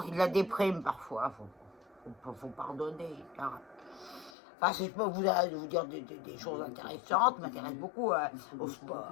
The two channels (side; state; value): right; drops out; at 4.3 s